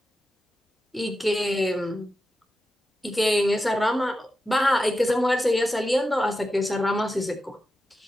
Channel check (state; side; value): normal; both; correlation 0.90